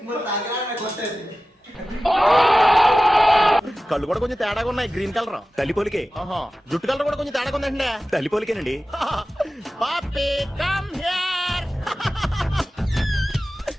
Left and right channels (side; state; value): both; normal; correlation 0.95